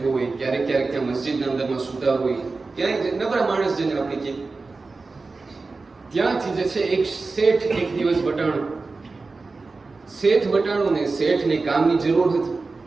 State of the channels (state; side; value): quieter; left; 3.9 dB